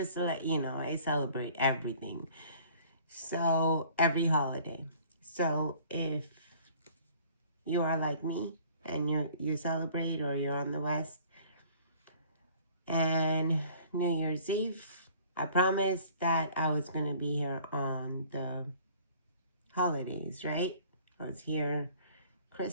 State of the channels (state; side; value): inverted; both; correlation -0.53